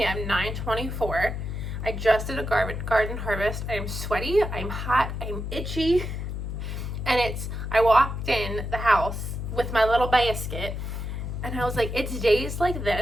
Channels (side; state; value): left; noise; hum, 5 dB below the sound